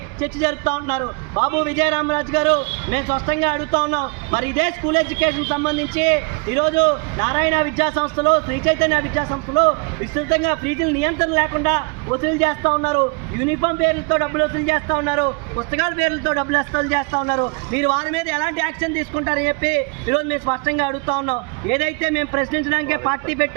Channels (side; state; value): left; quieter; 32.5 dB